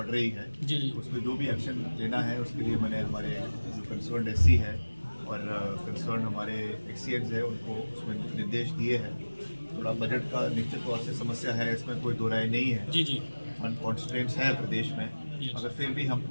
रही है जी। तो उसमें जो भी एक्शन लेना है उसके लिए मैंने हमारे जो कंसर्न SC है और कंसर्न हमारे एक्सीएंस है उनको उसमें निर्देश दिए हैं। थोड़ा बजट का निश्चित तौर से समस्या है, इसमें कोई दो राय नहीं है। जी फंड कॉन्स्ट्रेंट्स हैं प्रदेश में, मगर फिर भी हम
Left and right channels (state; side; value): inverted; both; correlation -1.00